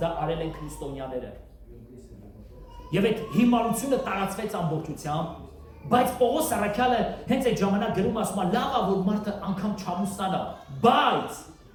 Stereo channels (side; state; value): both; identical; correlation 1.00